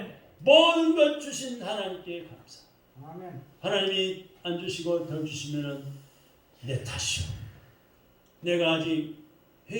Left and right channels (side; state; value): both; identical; correlation 1.00